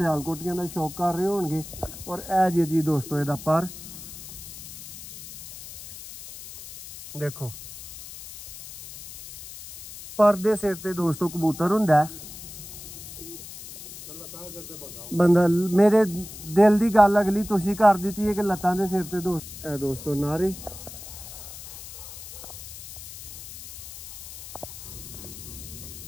ਦਾ ਸ਼ੌਕ ਕਰ ਰਹੇ ਹੋਣਗੇ। ਔਰ ਇਹ ਜੀ ਦੋਸਤੋ ਇਹਦਾ ਪਰ ਦੇਖੋ, ਪਰ ਦੇ ਸਿਰ ਤੇ ਦੋਸਤੋ ਕਬੂਤਰ ਹੁੰਦਾ। ਬੰਦਾ ਮੇਰੇ ਦਿਲ ਦੀ ਗੱਲ ਅਗਲੀ ਤੁਸੀਂ ਕਰ ਦਿੱਤੀ ਹੈ ਕਿ ਲੱਤਾਂ ਦੇ ਸਿਰ ਤੇ ਦੋਸਤੋ ਨਾਰੇ।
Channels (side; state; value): left; noise; hiss, 13 dB below the sound